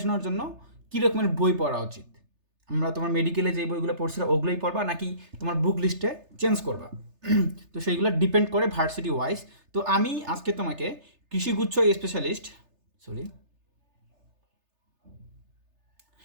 জন্য কী রকমের বই পড়া উচিত। আমরা তোমার মেডিকেলে যে বইগুলো পড়ছিলাম ওগুলোই পড়বা, নাকি তোমার বুক লিস্টে চেঞ্জ করবা? তো সেইগুলো ডিপেন্ড করে ভার্সিটি ওয়াইজ। তো আমি আজকে তোমাকে কৃষিগুচ্ছ স্পেশালিস্ট সরি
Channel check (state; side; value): late; left; 3.3 ms